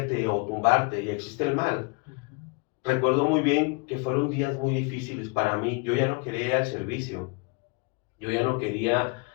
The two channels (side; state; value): right; quieter; 30.8 dB